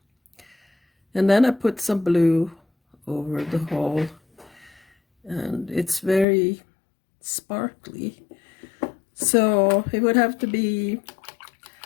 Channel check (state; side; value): drops out; right; at 6.2 s